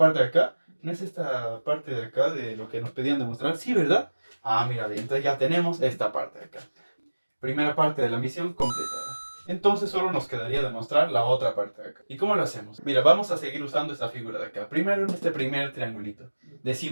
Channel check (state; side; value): inverted; both; correlation -1.00